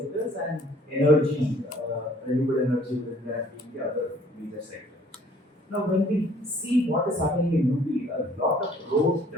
and energy, renewable energy within that being the other major sector. Now, when we see what is happening in UP, a lot of road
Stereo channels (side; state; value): both; normal; correlation 0.57